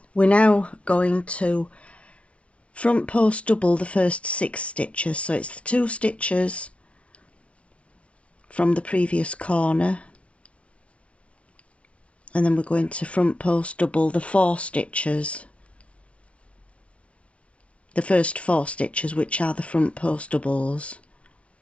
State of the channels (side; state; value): right; late; 0.062 ms